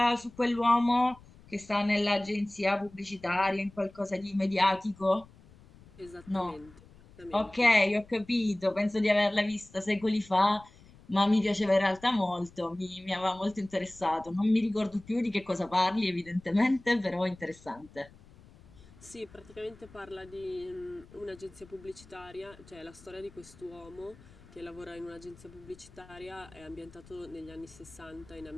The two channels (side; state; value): left; noise; rumble, 23 dB below the sound